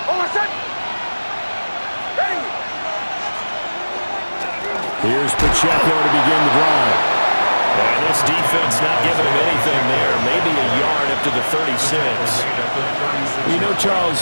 Here's Pacheco to begin the drive. And this defense not giving him anything there. Maybe a yard up to the 36. You know,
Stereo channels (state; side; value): inverted; both; correlation -1.00